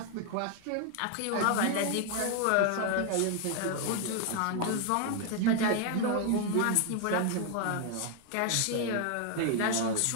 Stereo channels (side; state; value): both; different; correlation 0.00